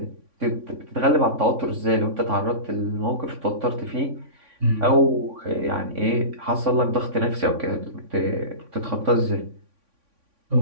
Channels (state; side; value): late; left; 3.5 ms